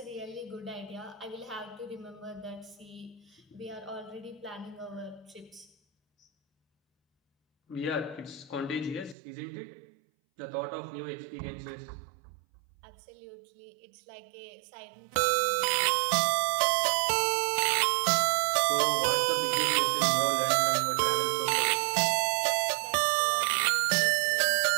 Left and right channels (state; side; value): drops out; left; at 9.2 s